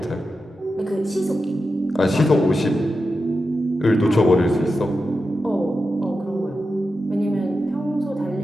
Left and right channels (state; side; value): normal; both; correlation 0.90